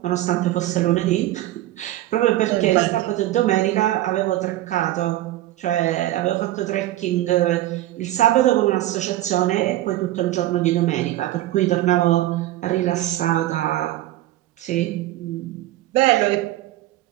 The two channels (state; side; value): quieter; left; 15.2 dB